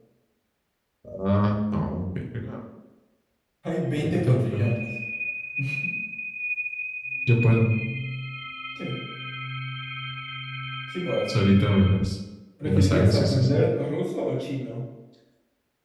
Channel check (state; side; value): identical; both; correlation 1.00